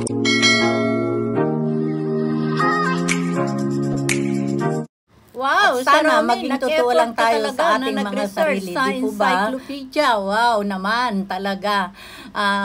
Wow, sana maging totoo lang tayo sa ating mga sarili, di po ba? Encyclopedia, wow naman talaga.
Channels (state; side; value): identical; both; correlation 1.00